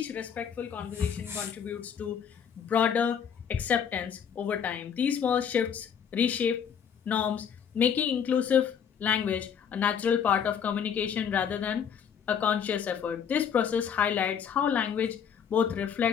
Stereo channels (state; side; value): quieter; right; 7.7 dB